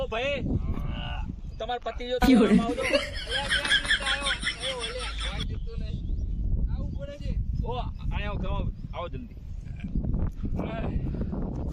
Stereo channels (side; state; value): both; identical; correlation 1.00